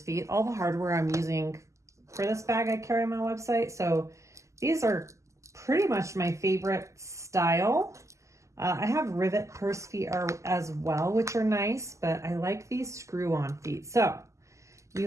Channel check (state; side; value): late; left; 0.15 ms